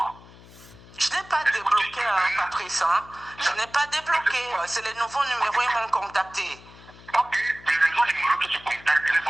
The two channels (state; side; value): noise; left; hum, 21 dB below the sound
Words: Je n'ai pas débloqué, Patrice. Hein? Je n'ai pas débloqué. C'est les nouveaux numéros, ils m'ont contacté. Ok, les nouveaux numéros que tu contactes, les